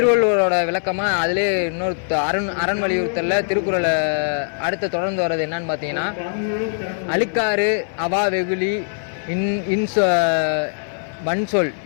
விளக்கமாக அதிலே இன்னொரு அரண் வலியுறுத்தலில் திருக்குறளை அடுத்து தொடர்ந்து வர்றது என்னன்னு பார்த்தீங்கன்னா, அழுக்காறு அவா வெகுளி வன்சொல்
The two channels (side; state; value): right; silent; digital silence